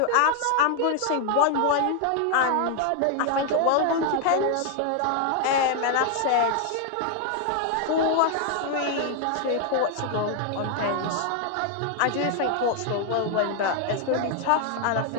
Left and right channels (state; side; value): different; both; correlation 0.00